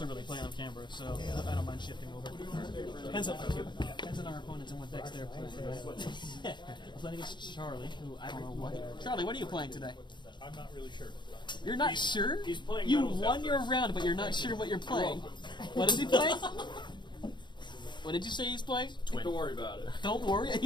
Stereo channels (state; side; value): late; right; 0.22 ms